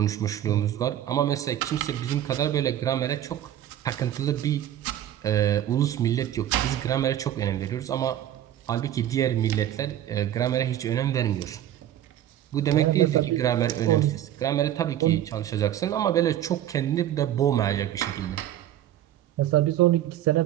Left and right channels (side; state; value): left; quieter; 11.8 dB